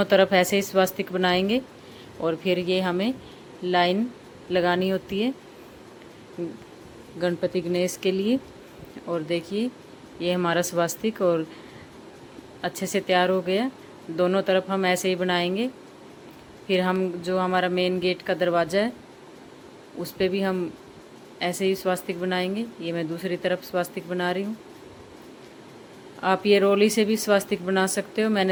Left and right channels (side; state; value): both; identical; correlation 1.00